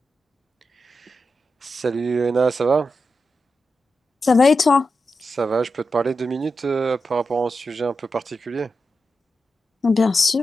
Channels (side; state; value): both; normal; correlation 0.89